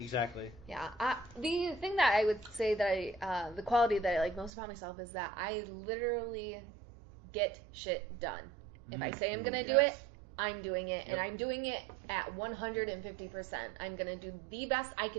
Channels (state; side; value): drops out; left; at 4.5 s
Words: Yeah. The thing that I would say that the quality that I like most about myself is that I literally get shit done. If I say I'm going to do it, I'm doing it. And I'm doing it at 150%. I'm going to do the best I